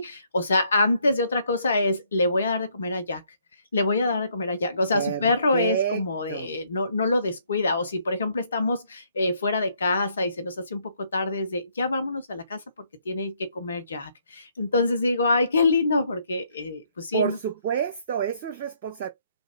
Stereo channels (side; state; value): both; inverted; correlation -0.69